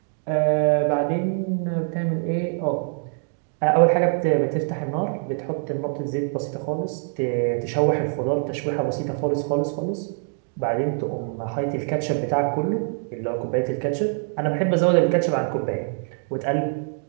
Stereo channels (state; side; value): silent; left; 55 dB below the other